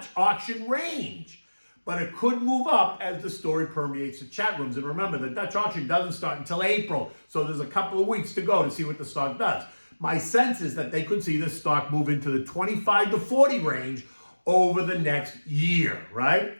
auction range, but it could move up as the story permeates the chat rooms. And remember, the Dutch auction doesn't start until April, so there's a couple of weeks to go to see what the stock does. My sense is that they could see this stock move into the 25 to 40 range over the next year, right?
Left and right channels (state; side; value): inverted; both; correlation -1.00